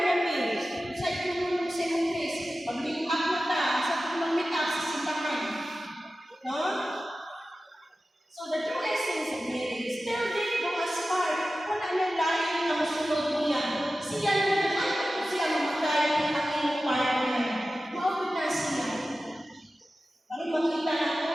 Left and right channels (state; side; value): normal; both; correlation 0.95